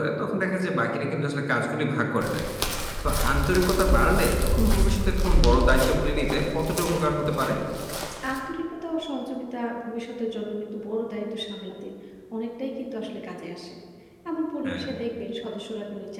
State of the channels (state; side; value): identical; both; correlation 1.00